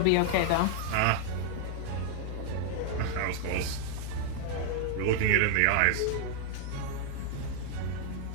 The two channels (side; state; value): both; different; correlation 0.00